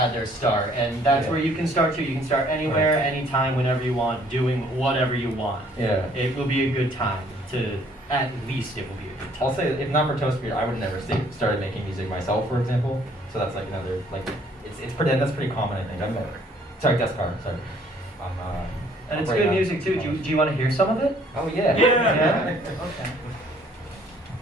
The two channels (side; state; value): both; normal; correlation 0.60